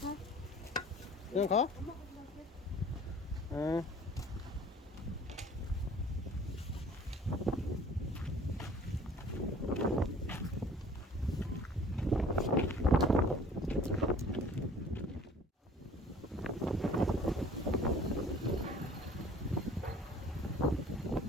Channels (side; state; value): both; normal; correlation 0.50